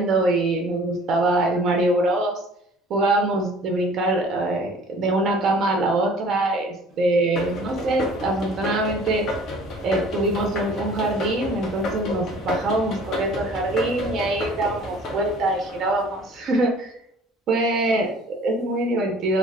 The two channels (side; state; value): both; normal; correlation 0.50